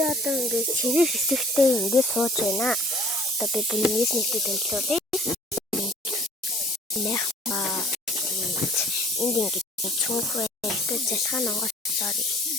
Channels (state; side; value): normal; both; correlation 0.55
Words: одоо ингээд цэвэр хэсэгтээ ингээд сууж байна. Одоо би бүнээс нэгтэй тэмцүүлээ. Энд ингээд чүнхвэ ихтэй залхаан онгоцоор